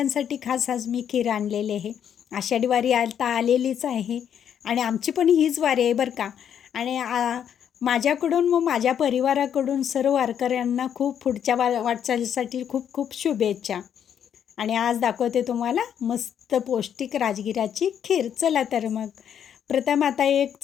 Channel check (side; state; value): right; quieter; 8.9 dB